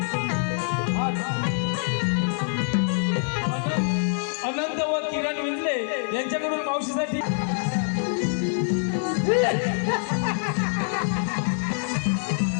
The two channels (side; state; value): right; silent; digital silence